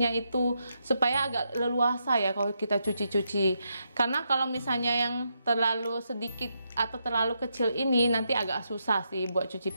itu supaya agak leluasa ya kalau kita cuci-cuci. Karena kalau misalnya yang terlalu sedikit atau terlalu kecil ini nanti agak susah sih buat cuci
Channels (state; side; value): inverted; both; correlation -0.81